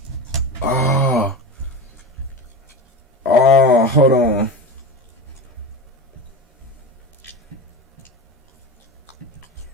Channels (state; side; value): normal; both; correlation 0.25